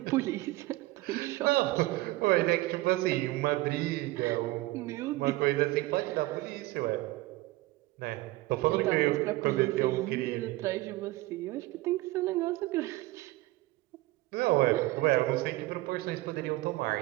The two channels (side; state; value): left; quieter; 19.2 dB